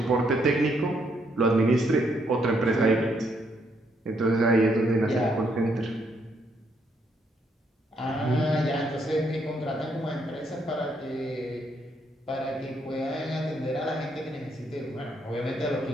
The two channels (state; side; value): normal; both; correlation 0.73